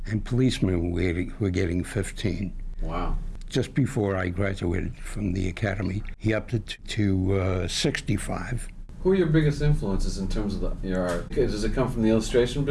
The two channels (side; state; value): both; identical; correlation 1.00